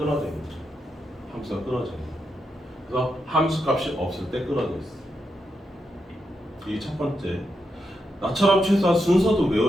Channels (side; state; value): both; normal; correlation 0.84